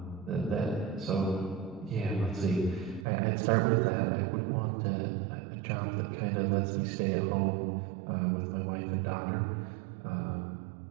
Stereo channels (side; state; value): left; drops out; at 3.1 s